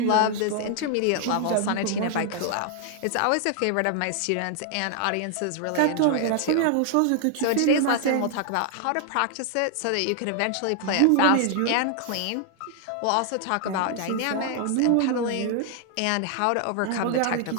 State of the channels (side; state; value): both; different; correlation 0.00